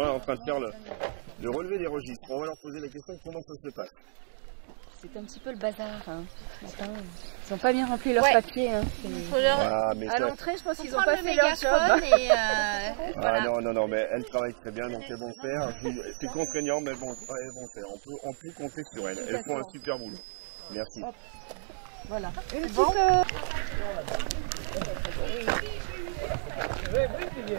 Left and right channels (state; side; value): silent; left; digital silence